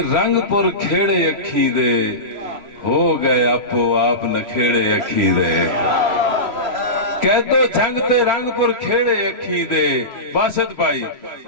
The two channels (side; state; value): left; late; 3.0 ms